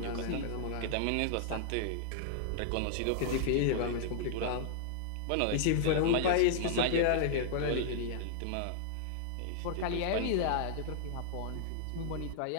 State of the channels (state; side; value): different; both; correlation -0.01